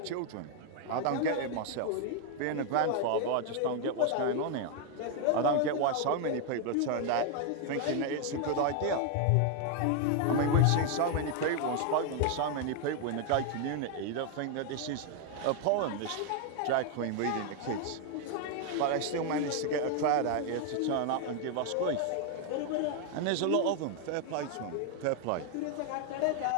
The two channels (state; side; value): different; both; correlation 0.00